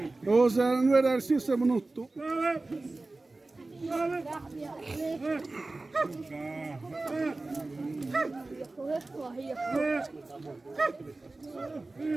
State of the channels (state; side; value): quieter; left; 3.2 dB